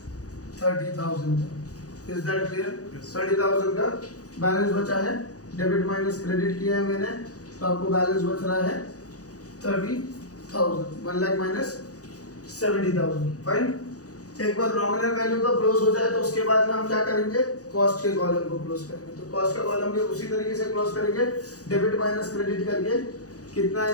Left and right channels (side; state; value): right; late; 0.67 ms